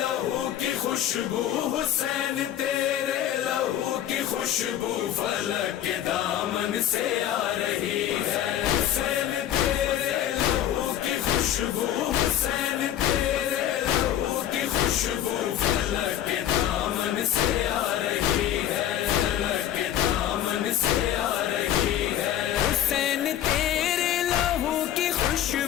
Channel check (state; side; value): quieter; right; 11.3 dB